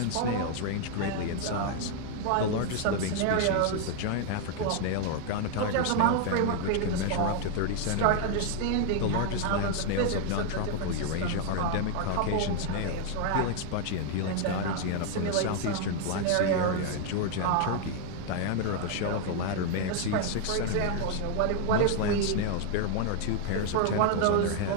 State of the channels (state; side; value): different; both; correlation 0.00